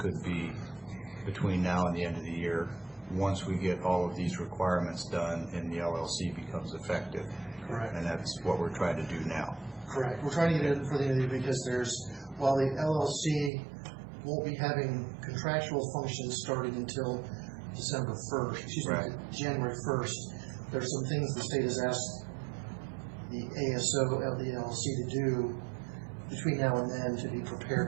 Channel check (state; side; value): drops out; left; at 13.5 s